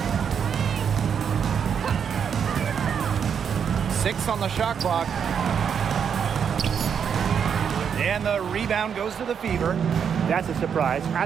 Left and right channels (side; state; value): left; quieter; 7.4 dB